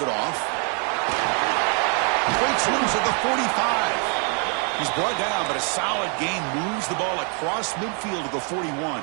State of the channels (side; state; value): left; quieter; 39.4 dB